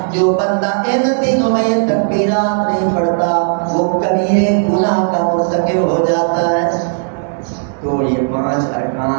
جو بندہ ان دنوں میں یہ تکبیرات نہیں پڑھتا وہ کبیرے گناہ کا مرتکب ہو جاتا ہے۔ تو یہ 5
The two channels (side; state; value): left; silent; digital silence